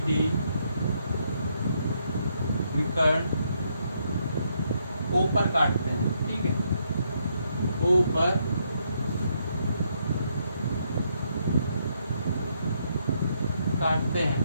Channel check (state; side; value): inverted; both; correlation -0.75